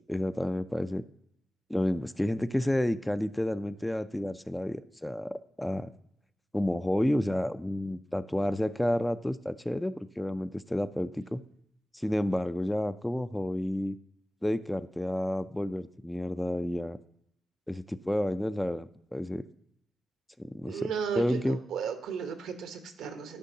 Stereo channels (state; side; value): normal; both; correlation 0.96